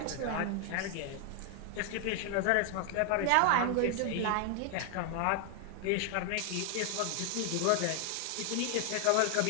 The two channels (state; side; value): different; both; correlation 0.00